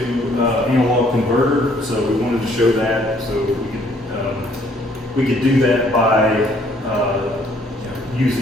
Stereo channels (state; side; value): normal; both; correlation 0.63